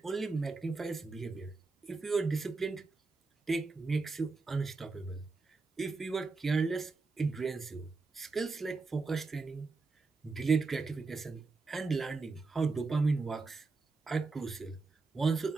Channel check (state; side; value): quieter; left; 4.0 dB